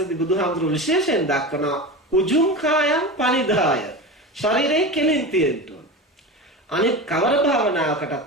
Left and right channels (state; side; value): normal; both; correlation 0.27